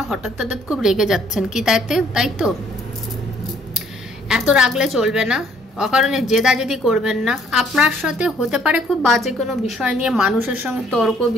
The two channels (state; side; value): normal; both; correlation 0.63